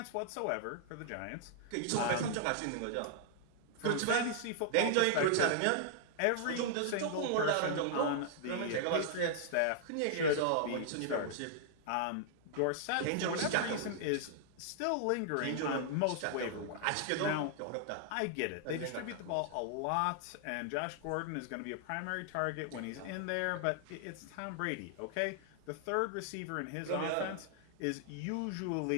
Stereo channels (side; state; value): both; different; correlation -0.01